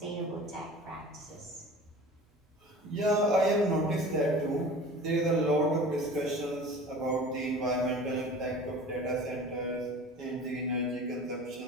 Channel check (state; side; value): normal; both; correlation 0.40